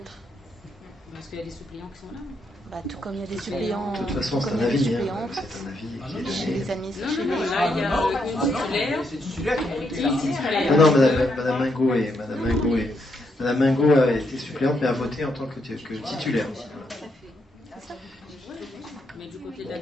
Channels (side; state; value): both; normal; correlation 0.78